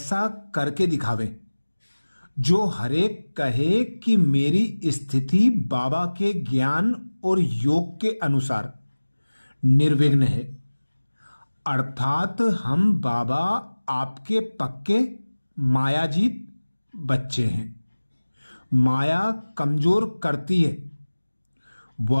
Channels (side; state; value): both; inverted; correlation -1.00